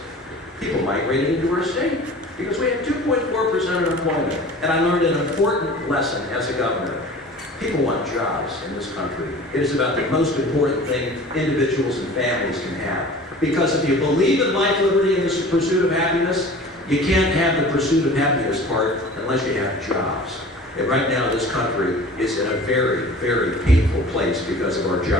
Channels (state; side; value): normal; both; correlation 0.42